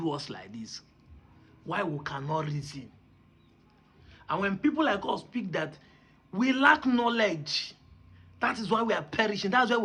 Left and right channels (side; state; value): both; identical; correlation 1.00